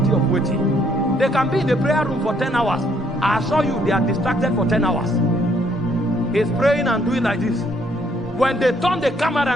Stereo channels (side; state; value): both; normal; correlation 0.68